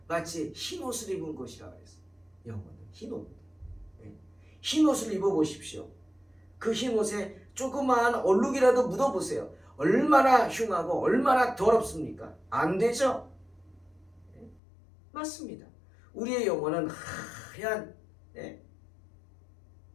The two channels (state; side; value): drops out; right; at 14.6 s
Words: 마치 흰옷을 입은 것이라 그랬어요. 영혼은 흰옷. 흰옷을 입어보십시오. 그 흰옷에 조그마한 얼룩이라도 묻어보세요. 얼마나 흉하고 얼마나 더럽습니까? 안 되죠? 맞습니다. 우리의 영혼은 하얀